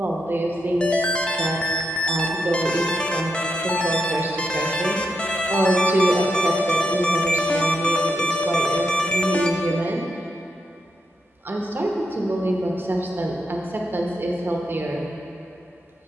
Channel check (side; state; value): both; normal; correlation 0.83